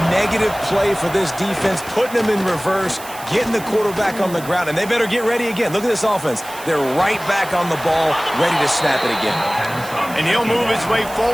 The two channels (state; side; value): noise; right; hiss, 16 dB below the sound